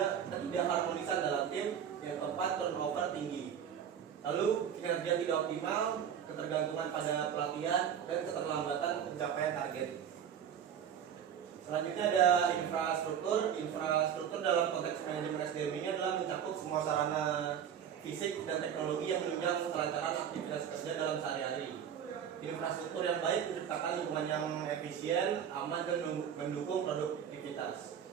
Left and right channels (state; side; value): quieter; left; 8.5 dB